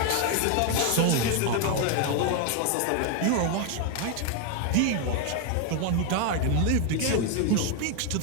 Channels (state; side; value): different; both; correlation 0.01